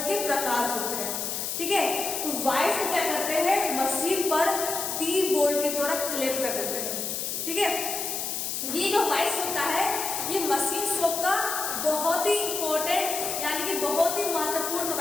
के प्रकार होते हैं। ठीक है, तो वॉइस को क्या करते हैं, मशीन पर टी बोल्ट के द्वारा क्लेम कर देते हैं। ठीक है, ये जो वॉइस होता है, ये मशीन शॉप का बहुत ही इंपॉर्टेंट यानी कि बहुत ही महत्वपूर्ण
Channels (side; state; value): left; noise; hiss, 3 dB below the sound